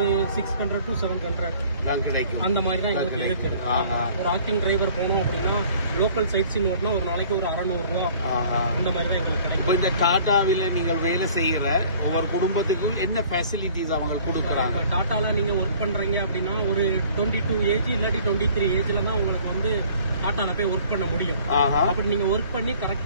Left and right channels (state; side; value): inverted; both; correlation -0.52